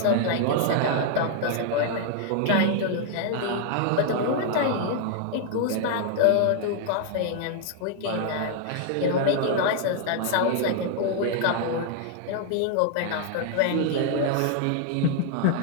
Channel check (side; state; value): both; different; correlation 0.00